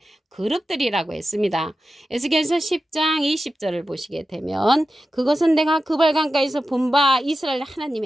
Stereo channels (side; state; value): both; normal; correlation 0.92